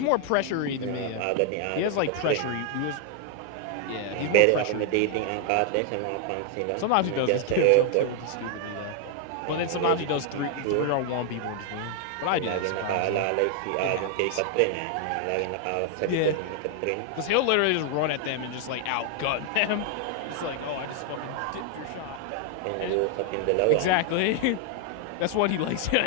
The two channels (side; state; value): both; different; correlation 0.00